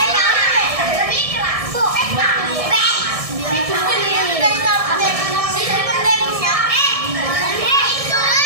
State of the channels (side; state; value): left; late; 1.6 ms